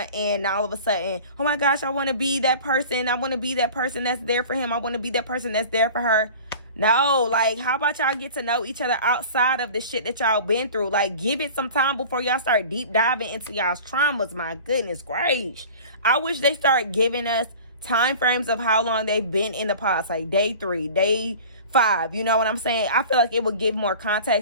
and all of a sudden, oh my gosh, I want to be that person. I want to be that person that's there for him. I want to be that person that's there for her. No, like, how about y'all get to know each other outside of the shit that y'all been through? Like, give it some time before y'all start deep diving into y'all's traumas. My goodness gracious. I wish they start giving us time frames of how long they've been in the past, like day 3, day 5. You know what I'm saying? I feel like it would give more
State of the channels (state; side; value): inverted; both; correlation -0.40